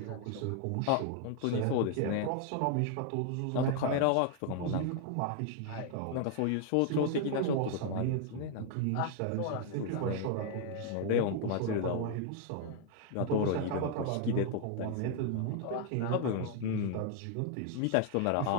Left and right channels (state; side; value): different; both; correlation 0.00